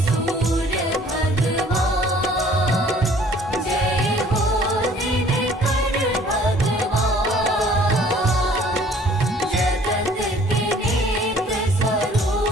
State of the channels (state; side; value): normal; both; correlation 0.55